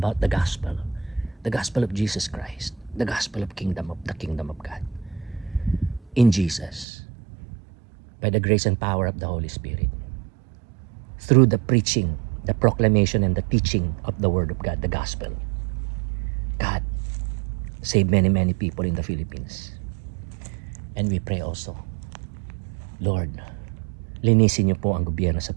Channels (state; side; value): drops out; left; at 6.9 s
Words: the gospel of Jesus Christ, the gospel of the kingdom of God. In Jesus, by the grace and power of the Holy Spirit, through the preaching, the proclamation, and the teaching of the Word of God, the gospel, God save many, many people in the Philippines. And we pray also, Lord, linisin niyo po ang gobyerno sa